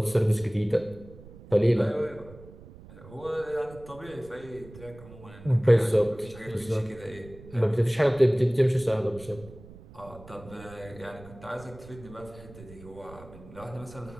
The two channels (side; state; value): right; noise; rumble, 19 dB below the sound